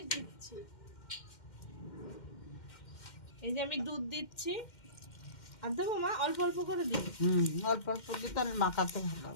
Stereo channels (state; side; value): late; right; 2.1 ms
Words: দিচ্ছি। এই যে আমি দুধ দিচ্ছি, আর দেবো মা, অল্প অল্প করে দিই। অল্প অল্প দিয়ে তাহলে মাখাতে